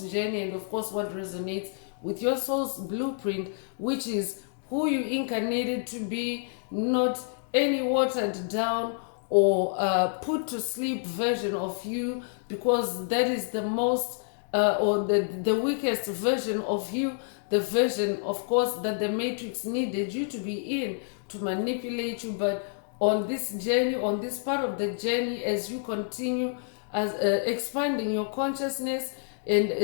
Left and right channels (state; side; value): silent; right; digital silence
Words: journey, and of course, what resonates with your soul's blueprint, which is who you incarnated to be, not any watered down or put to sleep version of you, because that is the most or the weakest version of you, the version, of course, that the matrix needed you to be in to manipulate you. But on this journey, on this part of the journey, as you continue as expanding your consciousness, and